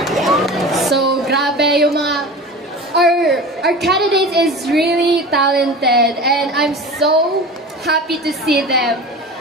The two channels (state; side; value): normal; both; correlation 0.34